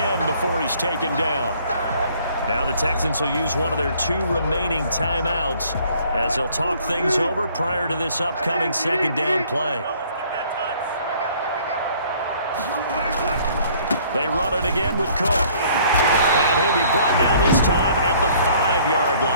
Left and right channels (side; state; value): both; inverted; correlation -0.58